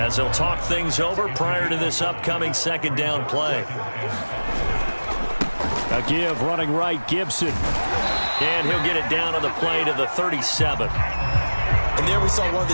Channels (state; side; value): inverted; both; correlation -1.00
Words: they'll talk things over prior to this upcoming second down play. A give running right, Gibson. And he'll get it down on the play to the 37. And there we saw one of